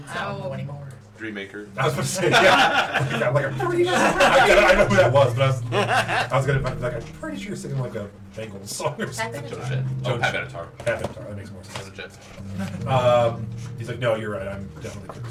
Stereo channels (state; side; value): identical; both; correlation 1.00